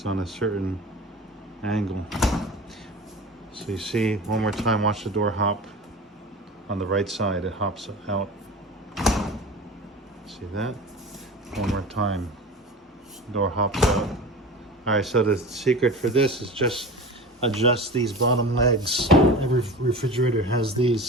on a certain angle. So you see, one more time, watch the door hop. On the right side, it hops out. See that? One more time. Door hops out. All right, so the secret for this is just adjust these bottom legs. Every refrigerator has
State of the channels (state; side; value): normal; both; correlation 0.33